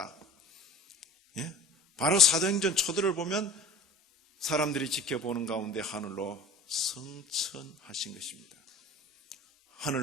예? 바로 사도행전 초들을 보면 사람들이 지켜보는 가운데 하늘로 승천하신 것입니다.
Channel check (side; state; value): both; normal; correlation 0.42